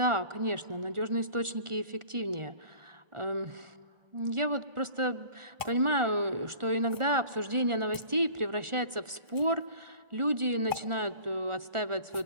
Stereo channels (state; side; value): late; left; 1.4 ms